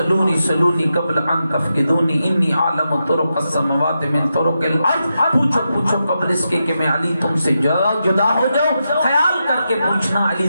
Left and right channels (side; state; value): both; inverted; correlation -0.87